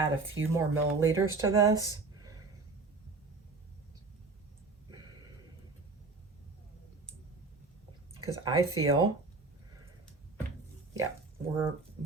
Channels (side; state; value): left; quieter; 3.9 dB